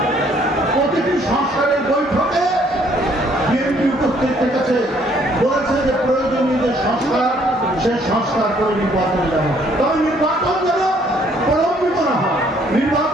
প্রতিটি সংস্কারের বৈঠকে বিএনপি উপস্থিত থেকেছে, বলেছে যে প্রয়োজনীয় যে সংস্কার, সে সংস্কার করে নির্বাচন যাবে। তবে নির্বাচন যেন প্রলম্বিত না হয়,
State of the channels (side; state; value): both; normal; correlation 0.64